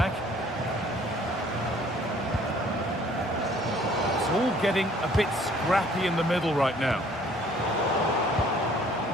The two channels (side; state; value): both; normal; correlation 0.57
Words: It's all getting a bit scrappy in the middle right now.